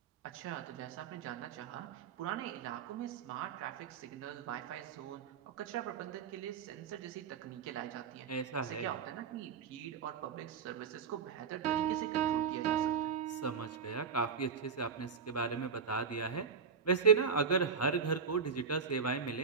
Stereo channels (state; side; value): quieter; left; 6.2 dB